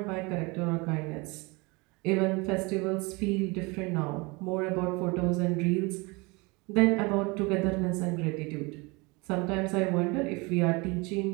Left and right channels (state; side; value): quieter; left; 26.8 dB